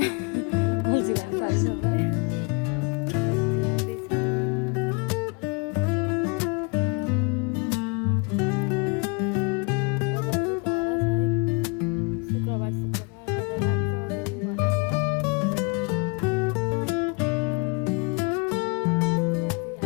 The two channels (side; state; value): right; quieter; 33.5 dB